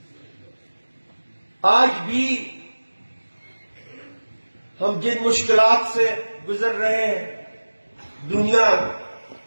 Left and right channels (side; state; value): both; inverted; correlation -1.00